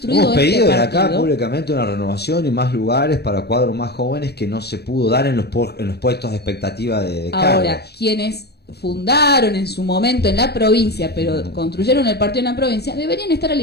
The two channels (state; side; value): late; right; 0.47 ms